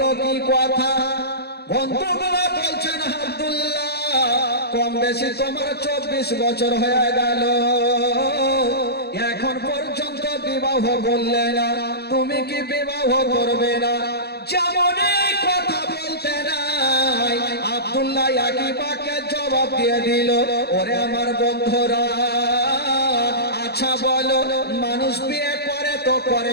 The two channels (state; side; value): late; right; 0.47 ms